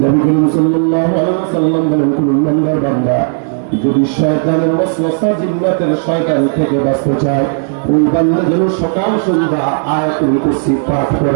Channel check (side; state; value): left; silent; 68 dB below the other